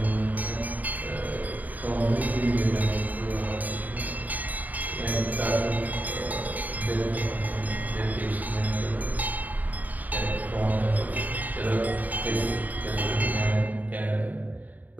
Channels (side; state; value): left; late; 0.079 ms